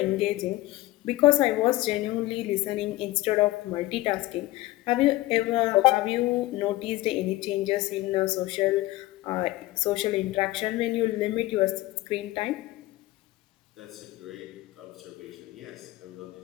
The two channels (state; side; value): quieter; right; 18.0 dB